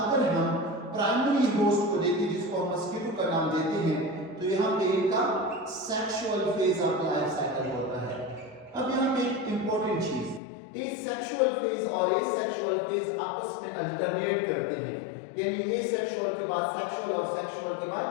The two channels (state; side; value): drops out; right; at 10.4 s